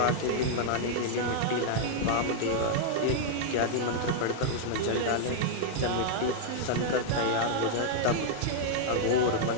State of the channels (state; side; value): different; both; correlation -0.01